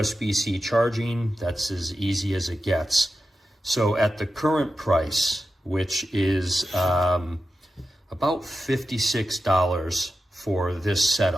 charging, that's as easy as it gets. So at the current price, which is about $56 for this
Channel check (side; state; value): both; normal; correlation 0.91